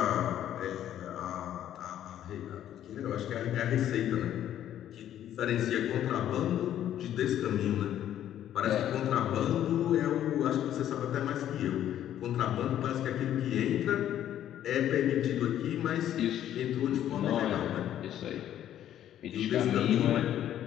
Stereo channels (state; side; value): quieter; right; 11.3 dB